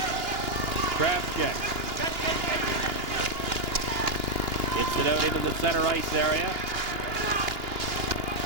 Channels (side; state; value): left; late; 2.9 ms